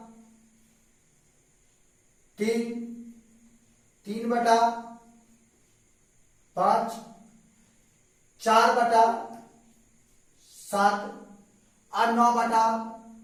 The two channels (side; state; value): both; identical; correlation 1.00